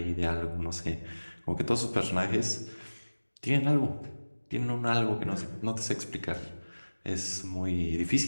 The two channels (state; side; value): inverted; both; correlation -1.00